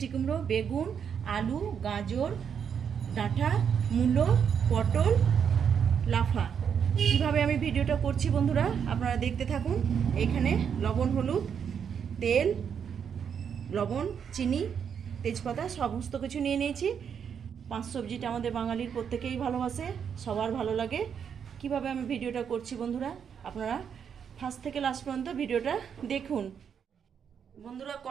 কুমড়ো, বেগুন, আলু, গাজর, ডাঁটা, মূলো, পটল, লাফা। কীভাবে আমি ভিডিওটা করছি বন্ধুরা আপনারা দেখতে থাকুন। এখানে লবণ, হলুদ, তেল, লবণ, চিনি, তেজপাতা সমস্ত কিছু নিয়ে নিয়েছি। পাঁচ সবজিটা আমাদের বাঙালির প্রত্যেকেই ভালোবাসে, সবার ভালো লাগে। কিভাবে আমি ভিডিওটা করছি বন্ধুরা আপনারা ফার্স্ট থেকে লাস্ট পর্যন্ত ভিডিওটা দেখুন। বন্ধুরা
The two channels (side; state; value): left; quieter; 7.5 dB